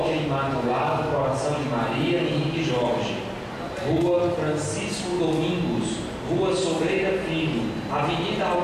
Imaculado Coração de Maria Henrique Jorge, Rua Francisco Domingos, Rua Sobreira Filho, Avenida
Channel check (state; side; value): identical; both; correlation 1.00